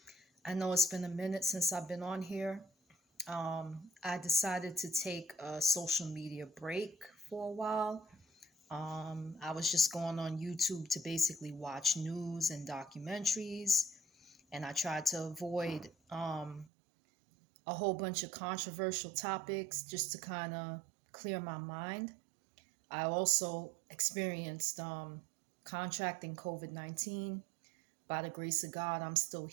I know it's been a minute since I've been on here. I decided to take a social media break for a while. I was just going on YouTube to basically watch news and documentaries, and I tried to avoid a whole bunch of controversial topics just to kind of clear my mind. I also experienced contracting COVID 19. By the grace of God, I'm still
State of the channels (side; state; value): left; drops out; at 16.7 s